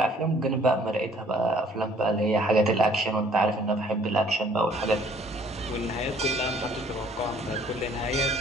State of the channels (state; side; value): normal; both; correlation 0.58